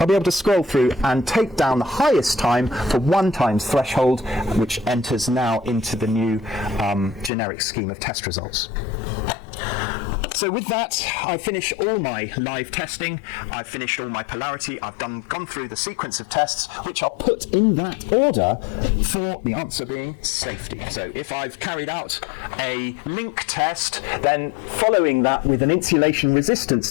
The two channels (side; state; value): right; drops out; at 7.3 s